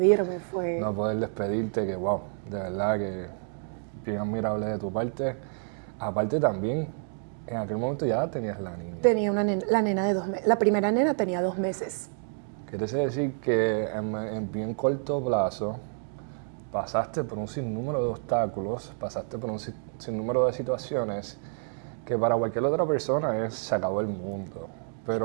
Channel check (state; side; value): silent; left; 59 dB below the other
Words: fue... No poder despedirte, que wow, de verdad que bien admirable de tu parte. Aparte también, en aquel momento ya tenías la niña. Tenía una nena, la nena de 2 meses. La primera nena tenía 2 meses. Quiere decir que en bien corto plazo pasaste por un sinnúmero de obstáculos, pasaste por un sinnúmero de situaciones que para cualquier otra persona se acabó el mundo.